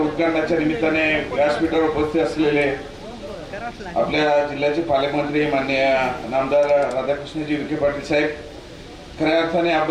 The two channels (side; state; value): both; identical; correlation 1.00